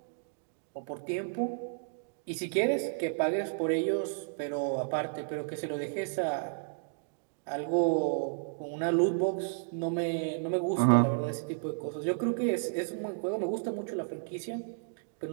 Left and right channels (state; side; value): silent; left; digital silence